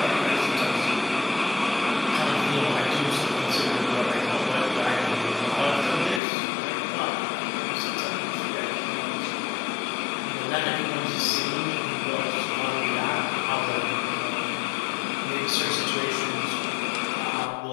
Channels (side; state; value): right; drops out; at 6.2 s